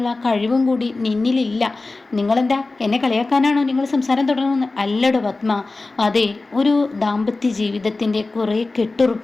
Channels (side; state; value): right; quieter; 3.4 dB